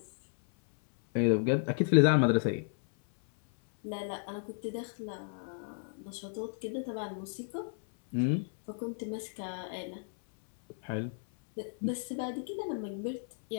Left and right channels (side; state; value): right; silent; 56 dB below the other